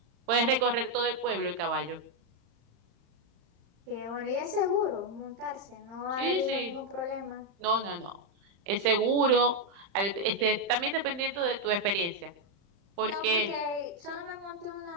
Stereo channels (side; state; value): left; late; 35 ms